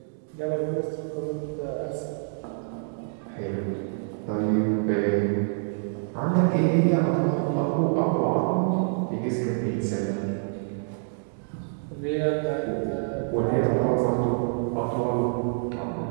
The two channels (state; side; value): silent; left; digital silence